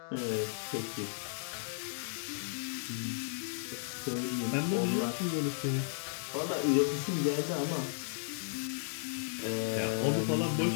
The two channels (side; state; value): right; silent; digital silence